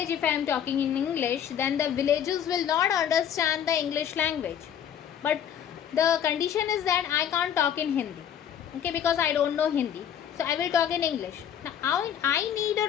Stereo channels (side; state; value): right; quieter; 9.3 dB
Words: if I am talking in English, then the villagers will not understand the English language. But the condition is that I can't talk in Hindi, okay, because I don't know Hindi, so I will talk in English. Now I need a